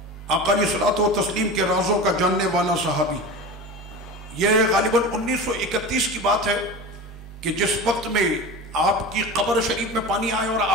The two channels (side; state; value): both; normal; correlation 0.30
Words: آقا علیہ الصلوۃ والتسلیم کے رازوں کا جاننے والا صحابی. یہ غالباً 1931 کی بات ہے کہ جس وقت میں آپ کی قبر شریف میں پانی آئے اور